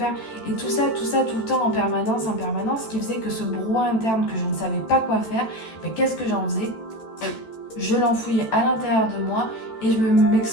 Et tout ça, tout le temps, en permanence, qui faisait que ce brouhaha interne que je ne savais pas quoi faire, mais qu'est-ce que j'en faisais? Je l'enfouillais à l'intérieur de moi et je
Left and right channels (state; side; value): late; right; 14 ms